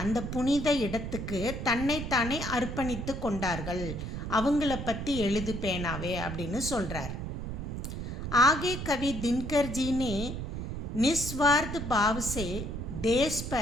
அந்த புனித இடத்துக்கு தன்னைத்தானே அர்ப்பணித்து கொண்டார்கள். அவங்கள பற்றி எழுது பேனாவே அப்படின்னு சொல்கிறார். ஆகே கவி தின்கர்ஜினே निस्वार्थ भाव से देश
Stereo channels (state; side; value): noise; right; rumble, 5 dB below the sound